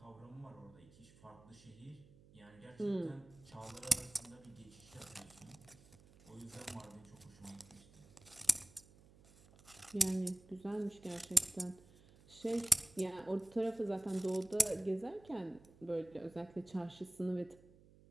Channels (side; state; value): right; noise; hum, 24 dB below the sound